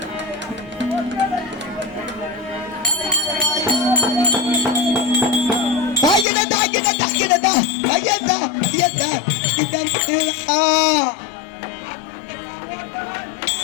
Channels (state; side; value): drops out; right; at 6.2 s